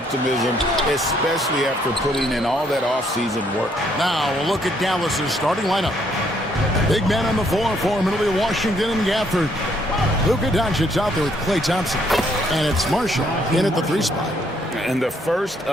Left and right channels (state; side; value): normal; both; correlation 0.69